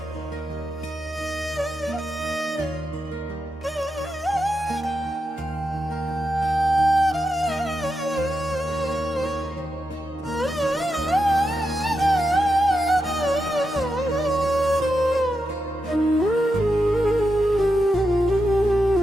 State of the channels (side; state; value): both; normal; correlation 0.86